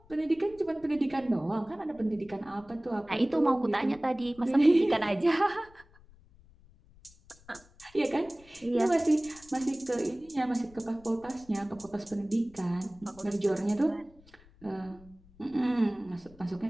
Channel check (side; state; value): left; noise; rumble, 25 dB below the sound